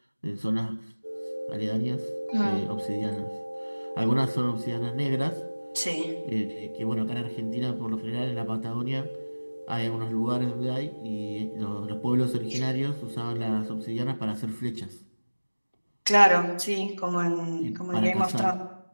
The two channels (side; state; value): both; inverted; correlation -1.00